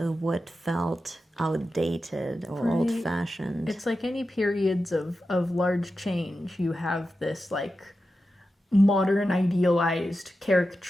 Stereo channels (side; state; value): both; normal; correlation 0.91